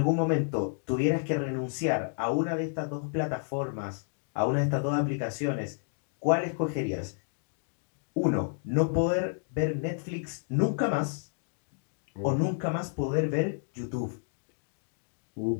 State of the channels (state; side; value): silent; right; digital silence